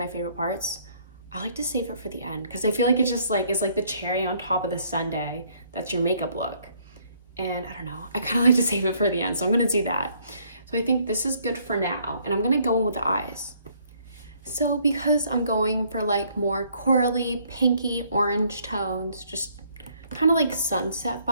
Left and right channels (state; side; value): inverted; both; correlation -0.65